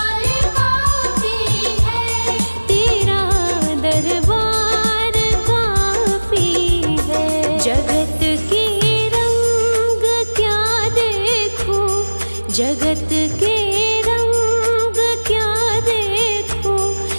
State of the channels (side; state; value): both; inverted; correlation -1.00